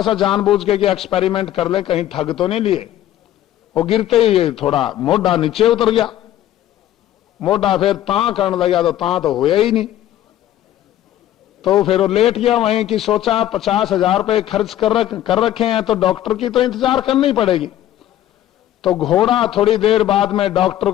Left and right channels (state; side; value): quieter; right; 12.7 dB